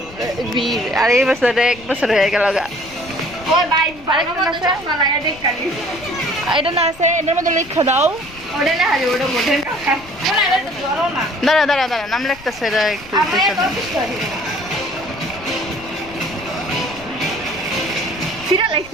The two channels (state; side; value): noise; left; rumble, 21 dB below the sound